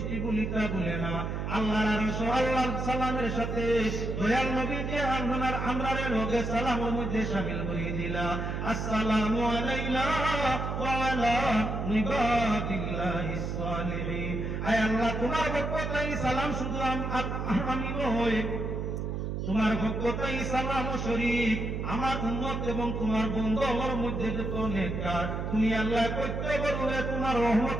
ভুলিতা ভুলে না। আল্লাহর আরশ আল্লাহর সালামের সাথে দয়াল নবী যে আমরারে লগে সালামের মধ্যে শামিল করে দিলা, আসসালামু আলাইনা ওয়া আলা ইবাদিল্লাহিস সালিহিন। আয় আল্লাহ, তোমার বরকতাই সালাম শুধু আমি নই, তোমার বরকতাই সালাম শরীক আমার উম্মত এবং তোমার বন্ধুর মধ্যে যত নেককার তুমি আল্লাহ প্রত্যেকরে তোমার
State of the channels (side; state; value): right; noise; hum, 3 dB below the sound